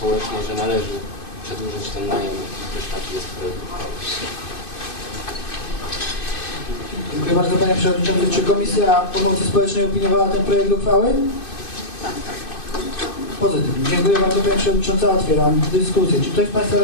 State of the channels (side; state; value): right; late; 2.5 ms